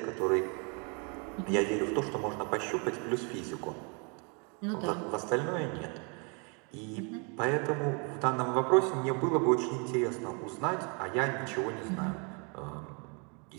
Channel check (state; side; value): quieter; left; 34.8 dB